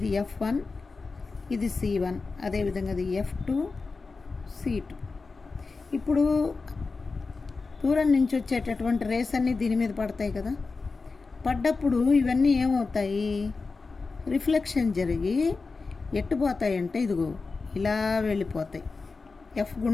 F1, ఇది C1, అదేవిధంగా అది F2, C2. ఇప్పుడు దూరం నుంచి వచ్చేటటువంటి రేస్ అన్నీ దీని మీద పడతాయి కదా, పడ్డప్పుడు ఇవన్నీ ఏమవుతాయి, రిఫ్లెక్షన్ జరిగి ఎట్టుపోతాయి అంటే ఇదిగో ఇలా వెళ్ళిపోతాయి, F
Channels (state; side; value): quieter; right; 4.2 dB